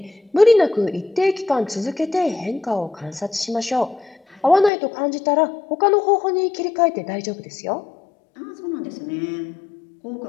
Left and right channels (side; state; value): right; drops out; at 4.7 s